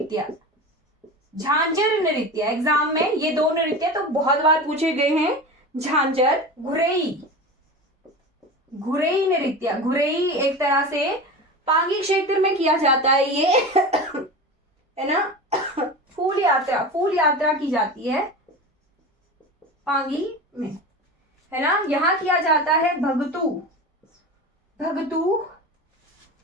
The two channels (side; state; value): both; normal; correlation 0.29